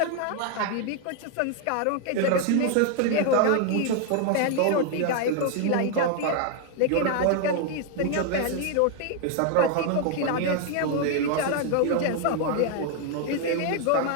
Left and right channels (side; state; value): both; different; correlation 0.00